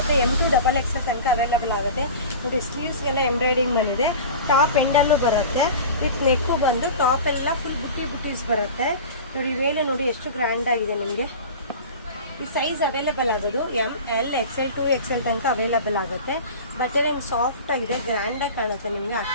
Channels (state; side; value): inverted; both; correlation -0.34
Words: M2XXL ತನಕ ಅವೈಲಬಲ್ ಆಗುತ್ತೆ ನೋಡಿ. ಸ್ಲೀವ್ಸ್ಗೆಲ್ಲ ಎಂಬ್ರಾಯ್ಡಿಂಗ್ ಬಂದಿದೆ, ಟಾಪ್ ಎಂಡಲ್ಲೂ ಬರುತ್ತೆ, ವಿತ್ ನೆಕ್ಕು ಬಂದು ಟಾಪ್ ಎಲ್ಲ ಫುಲ್ ಬುಟ್ಟೀಸ್ ಬರುತ್ತೆ ನೋಡಿ. ವೇಲು ನೋಡಿ ಎಷ್ಟು ಗ್ರ್ಯಾಂಡ್ ಆಗಿದೆ ನಿಮಗೆ. ಈ ಸೈಜ್ ಅವೈಲೇಬಲ್ ಆಗೋದು ML XL 2XL ತನಕ ಅವೈಲೇಬಲ್ ಆಗುತ್ತೆ. ಬಟ್ಟೆ ಏನು ಸಾಫ್ಟ್ ಆಗಿದೆ, ಗ್ರ್ಯಾಂಡಾಗಿ ಕಾಣುತ್ತೆ ನಿಮಗೆ.